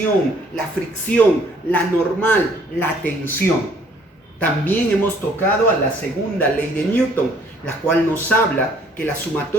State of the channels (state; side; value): normal; both; correlation 0.61